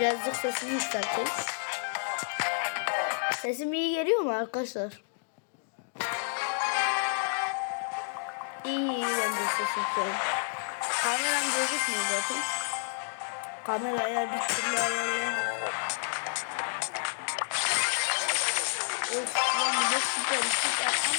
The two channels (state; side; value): silent; right; digital silence